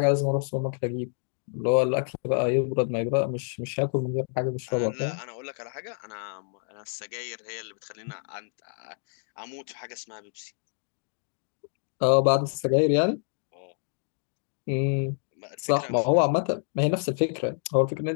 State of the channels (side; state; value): right; silent; digital silence